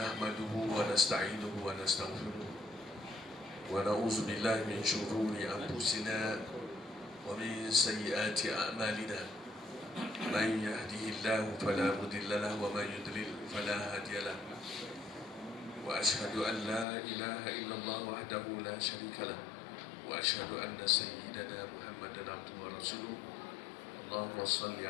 wa nasta'inuhu wa nastaghfiruh wa na'udzu billahi min shururi anfusina wa min sayyiati a'malina. Man yahdihillahu fala mudilla lahu wa man yudlil fala hadiya lahu. Wa ashhadu an la ilaha illallah wahdahu la syarika lahu wa ashhadu anna sayyidana Muhammadan abduhu wa rasuluh. اللهم صل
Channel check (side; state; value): right; drops out; at 16.9 s